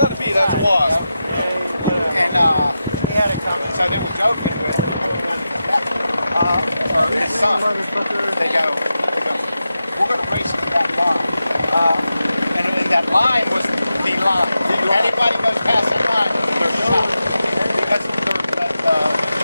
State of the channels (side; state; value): both; inverted; correlation -0.90